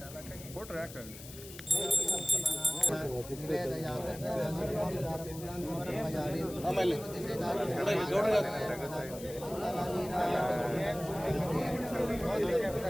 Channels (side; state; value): left; noise; hiss, 15 dB below the sound